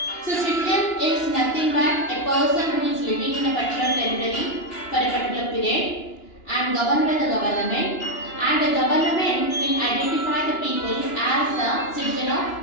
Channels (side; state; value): right; late; 2.9 ms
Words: So, citizen is nothing but a person who is living in a particular territory for a particular period and governed by the government, and the government will identify the people as a citizen of